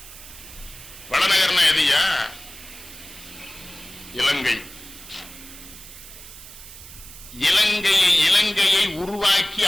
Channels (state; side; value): noise; right; hiss, 16 dB below the sound